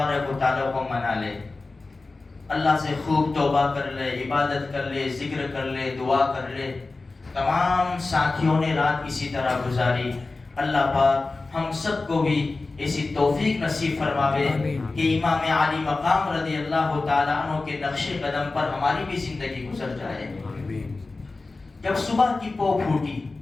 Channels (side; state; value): right; quieter; 3.5 dB